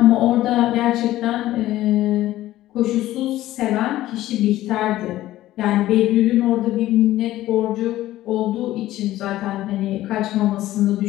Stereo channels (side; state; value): right; quieter; 15.0 dB